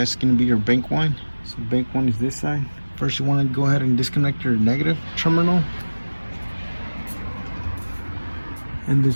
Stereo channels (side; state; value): both; inverted; correlation -1.00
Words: going to be your bank 1. So bank 1 is this side. First you want to go ahead and disconnect your negative terminal. And the